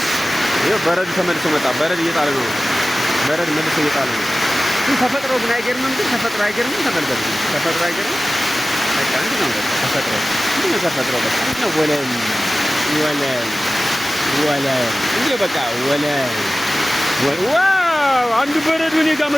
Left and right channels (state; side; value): normal; both; correlation 0.96